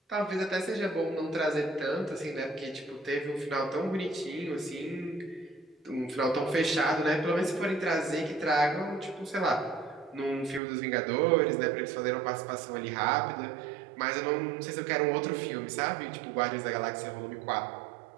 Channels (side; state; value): left; drops out; at 10.6 s